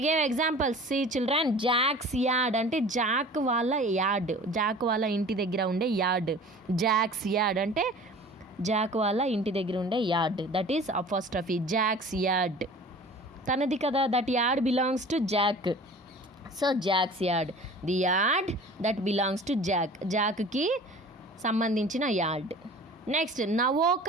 gave examples. See children, Jack's yard అంటే జాక్ వాళ్ళ యార్డ్. జాక్ వాళ్ళ ఇంటి దగ్గర ఉండే యార్డ్. జాక్స్ యార్డ్ అంటే జాక్ వాళ్ళ ఇంటి దగ్గర ఉండే yard. That is apostrophe. Jack's yard తనది కదా. That yard belongs to Jack. So Jack's yard, the yard that belongs to Jack. జాక్కి సంబంధించిన yard. Next,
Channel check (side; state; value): both; normal; correlation 0.43